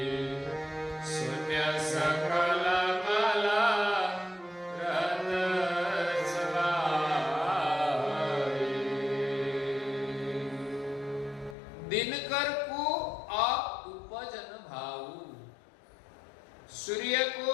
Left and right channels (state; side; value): drops out; right; at 11.6 s